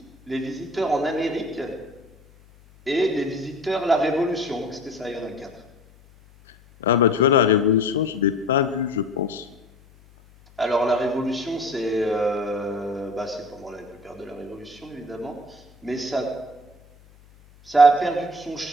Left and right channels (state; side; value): noise; left; hum, 27 dB below the sound